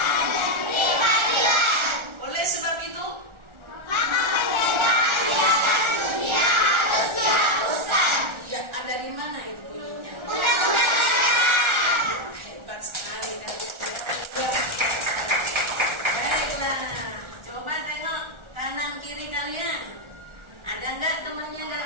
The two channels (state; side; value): late; left; 1.4 ms